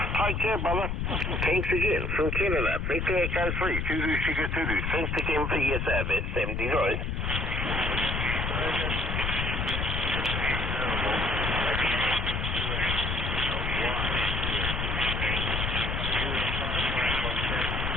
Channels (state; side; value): noise; left; rumble, 1 dB below the sound